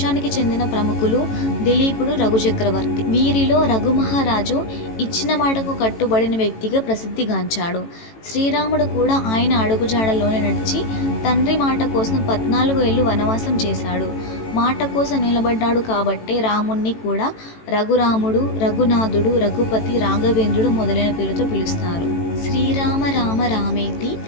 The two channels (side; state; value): right; late; 18 ms